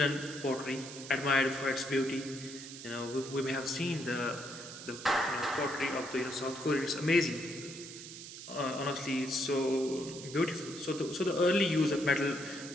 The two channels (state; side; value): noise; right; hiss, 12 dB below the sound